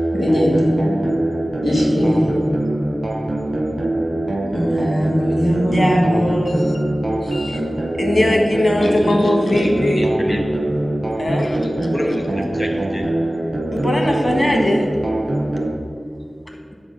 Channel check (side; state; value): both; normal; correlation 0.96